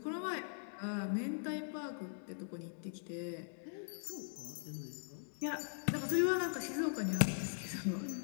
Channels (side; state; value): right; silent; digital silence